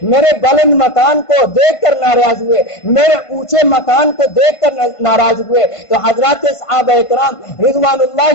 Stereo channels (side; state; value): right; late; 1.5 ms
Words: میرے بلند مکان کو دیکھ کر ناراض ہوئے، میرے اونچے مکان کو دیکھ کر ناراض ہوئے۔ تو حضرات صحابہ اکرام رضوان